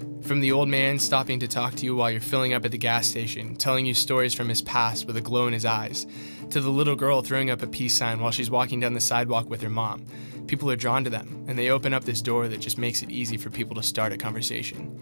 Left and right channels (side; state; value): both; inverted; correlation -1.00